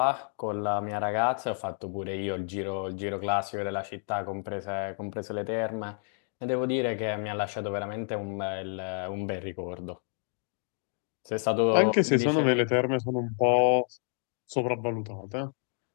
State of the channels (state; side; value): silent; right; 58 dB below the other